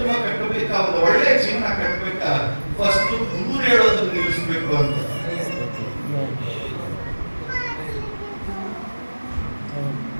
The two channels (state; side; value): inverted; both; correlation -1.00